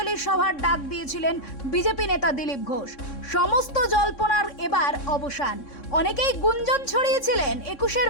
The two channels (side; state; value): right; late; 3.6 ms